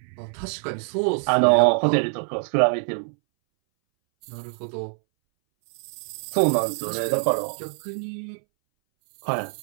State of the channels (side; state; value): left; silent; 61 dB below the other